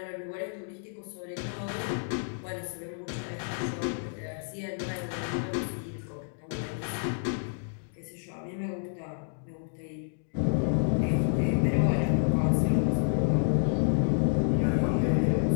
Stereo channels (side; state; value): right; silent; digital silence